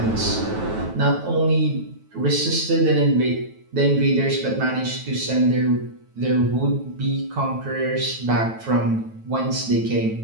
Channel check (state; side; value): late; left; 9.2 ms